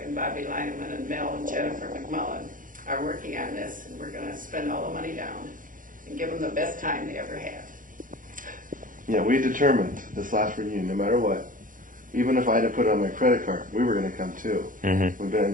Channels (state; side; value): late; left; 0.39 ms